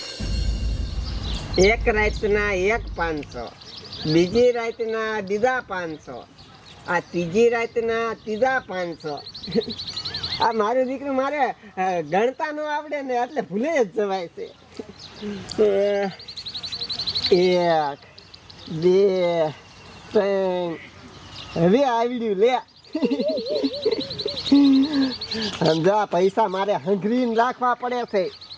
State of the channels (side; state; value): both; identical; correlation 1.00